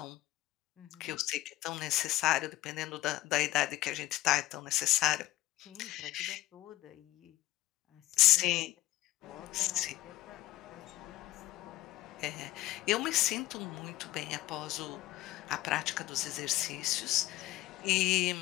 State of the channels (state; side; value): quieter; right; 16.3 dB